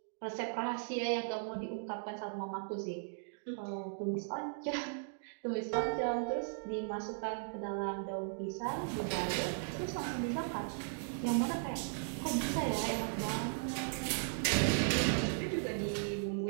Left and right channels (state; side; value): silent; left; digital silence